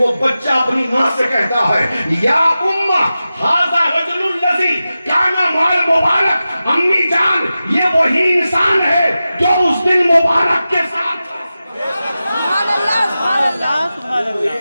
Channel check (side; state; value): both; inverted; correlation -0.94